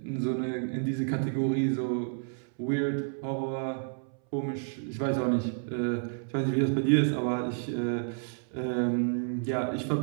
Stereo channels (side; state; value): left; silent; 58 dB below the other